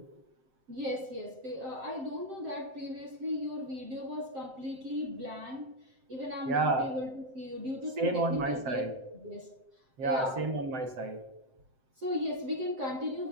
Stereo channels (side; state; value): left; late; 7.7 ms